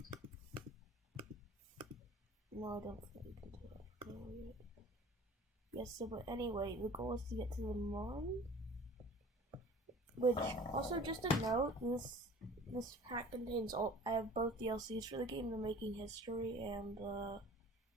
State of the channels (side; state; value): both; normal; correlation 0.45